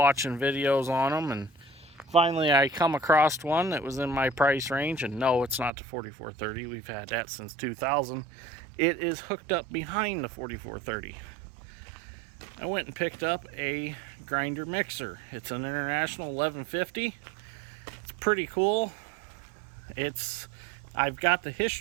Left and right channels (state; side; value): drops out; left; at 5.7 s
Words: videos on them, and finally I come across one that was in my price range. And no, it's not the 4430. We've had that since 2000. It is hooked up behind the 4430. I went and picked up a grinder mixer. It's an International 1150. It's pretty cool. I've got the